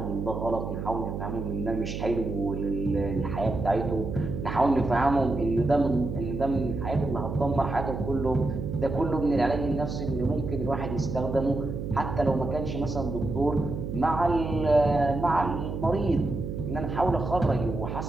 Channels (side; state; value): right; noise; hum, 5 dB below the sound